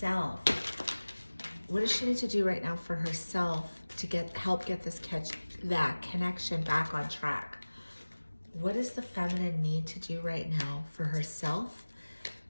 What does she need to do right now for herself to help get that connection back on track? What does the feminine need to do right now for herself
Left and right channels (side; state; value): both; inverted; correlation -1.00